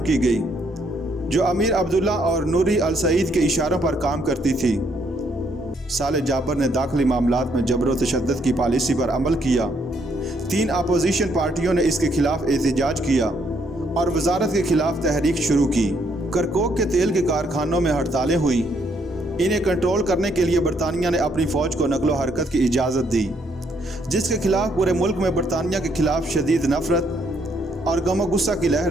گئی، جو امیر عبداللہ اور نوری السعید کے اشاروں پر کام کرتی تھی۔ صالح جابر نے داخلی معاملات میں جبر و تشدد کی پالیسی پر عمل کیا۔ 3 اپوزیشن پارٹیوں نے اس کے خلاف احتجاج کیا اور وزارت کے خلاف تحریک شروع کی۔ کرکوک کے تیل کے کارخانوں میں ہڑتالیں ہوئیں۔ انہیں کنٹرول کرنے کے لیے برطانیہ نے اپنی فوج کو نقل و حرکت کی اجازت دی، جس کے خلاف پورے ملک میں برطانیہ کے خلاف شدید نفرت اور غم و غصہ کی لہر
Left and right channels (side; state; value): both; normal; correlation 0.71